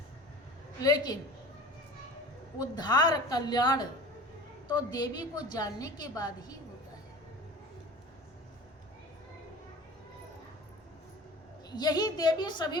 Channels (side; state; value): both; normal; correlation 0.39